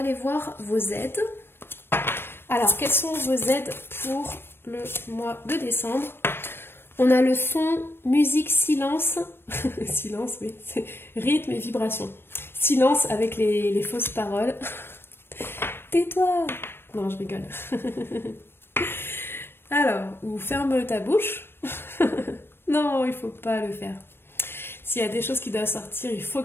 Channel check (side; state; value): right; late; 0.11 ms